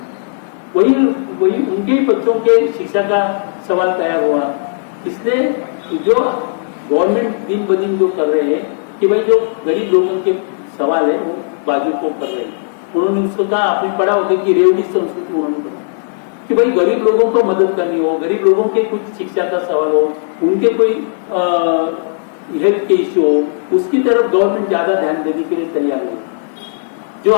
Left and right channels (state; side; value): silent; right; digital silence